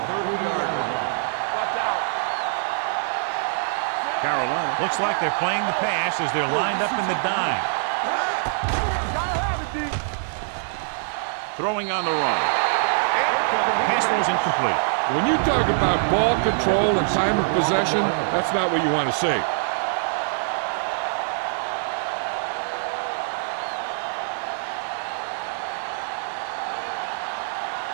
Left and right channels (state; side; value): silent; left; digital silence